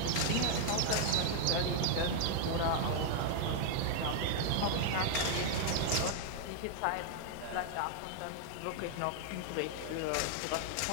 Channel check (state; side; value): different; both; correlation 0.00